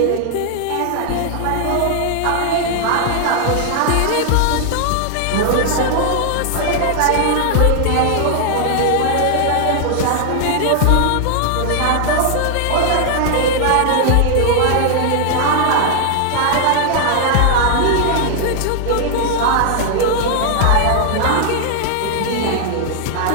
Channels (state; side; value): different; both; correlation 0.00